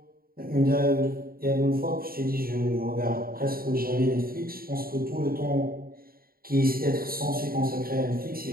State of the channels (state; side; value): late; left; 0.43 ms